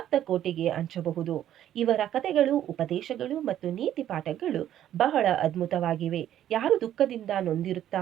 ಕೋಟೆಗೆ ಹಂಚಬಹುದು. ಇವರ ಕಥೆಗಳು, ಉಪದೇಶಗಳು ಮತ್ತು ನೀತಿ ಪಾಠಗಳು ಬಹಳ ಅದ್ಭುತವಾಗಿವೆ. ಯಾರು ದುಃಖದಿಂದ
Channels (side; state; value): left; quieter; 11.5 dB